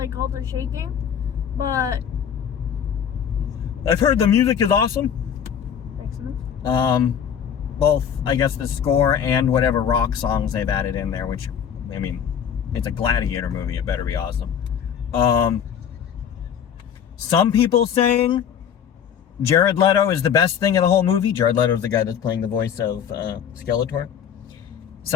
all the shaking, but I've heard the music is awesome. Excellent. Both, I guess, the score and whatever rock songs they've added in there, which, I mean, it's a Gladiator movie, it better be awesome. Some people saying Jared Leto is the best thing in the whole movie. Jared Leto is the guy that's playing the voice of Skeletor.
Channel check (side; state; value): right; quieter; 8.3 dB